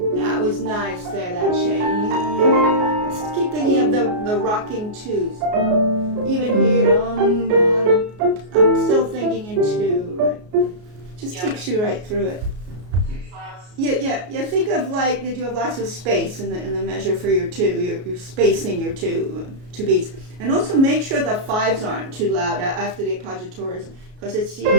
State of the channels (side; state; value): left; late; 33 ms